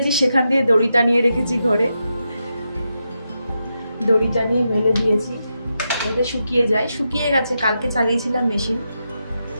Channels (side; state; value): both; inverted; correlation -0.86